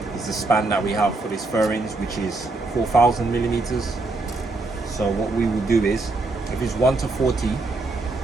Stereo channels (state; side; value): quieter; left; 3.3 dB